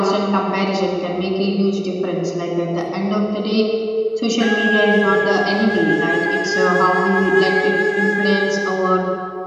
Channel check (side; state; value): both; identical; correlation 1.00